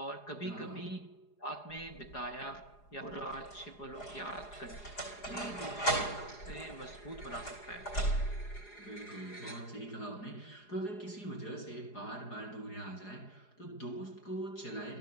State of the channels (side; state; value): right; late; 4.8 ms